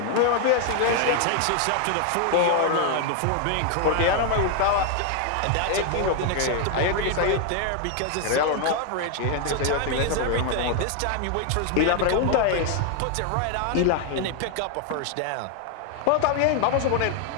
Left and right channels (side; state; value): both; different; correlation 0.00